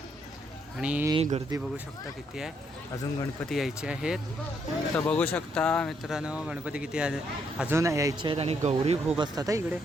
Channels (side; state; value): both; normal; correlation 0.73